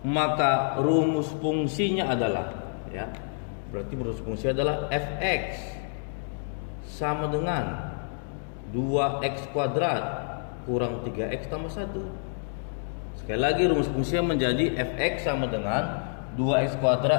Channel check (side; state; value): right; silent; digital silence